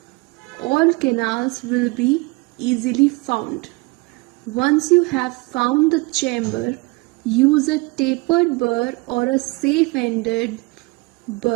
all canals will be easily found. Once you have found the chamber, use a tapered burr or a safe-ended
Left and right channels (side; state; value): left; quieter; 25.1 dB